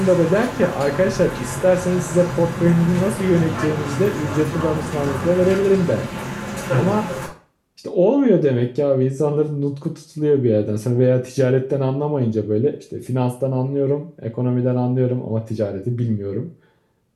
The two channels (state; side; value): identical; both; correlation 1.00